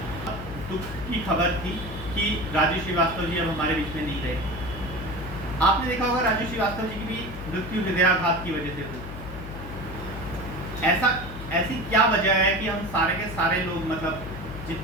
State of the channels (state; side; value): noise; left; hum, 11 dB below the sound